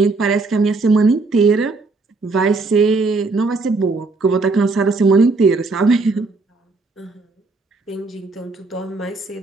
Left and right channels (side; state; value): left; quieter; 3.7 dB